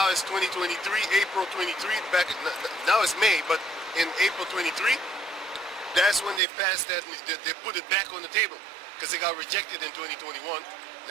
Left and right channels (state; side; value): drops out; left; at 6.4 s